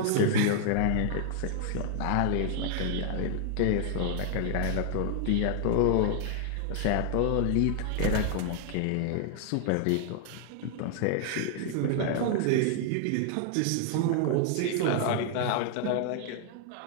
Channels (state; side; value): different; both; correlation 0.00